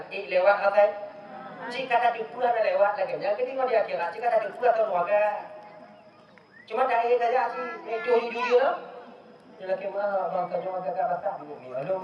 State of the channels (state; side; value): identical; both; correlation 1.00